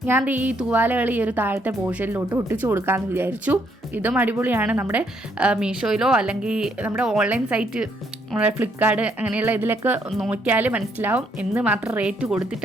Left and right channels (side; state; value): both; normal; correlation 0.71